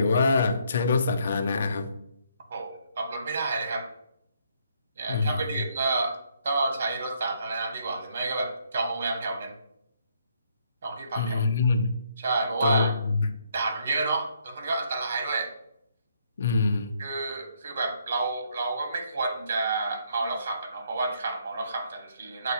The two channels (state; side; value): inverted; both; correlation -0.70